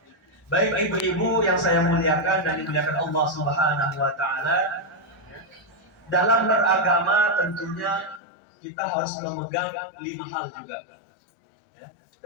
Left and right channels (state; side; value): drops out; right; at 8.2 s